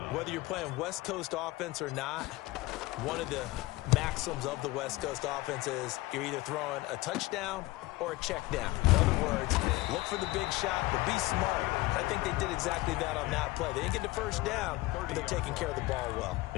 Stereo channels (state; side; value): quieter; right; 19.9 dB